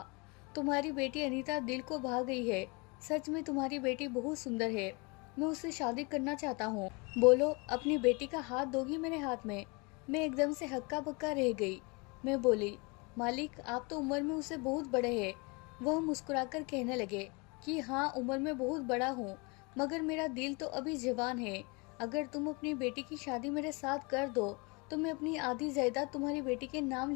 तुम्हारी बेटी अनीता दिल को भा गई है। सच में तुम्हारी बेटी बहुत सुंदर है। मैं उससे शादी करना चाहता हूँ। बोलो, अपनी बेटी का हाथ दोगी मेरे हाथ में? मैं एकदम से हक्का बक्का रह गई। मैं बोली, मालिक, आप तो उम्र में उससे बहुत बड़े हैं। वह मुस्कुराकर कहने लगे कि हाँ, उम्र में बहुत बड़ा हूँ, मगर मेरा दिल तो अभी जवान है। अगर तुम अपनी बेटी की शादी मेरे साथ कर दो तो मैं अपनी आधी जायदाद तुम्हारी बेटी के नाम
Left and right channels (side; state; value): right; quieter; 29.3 dB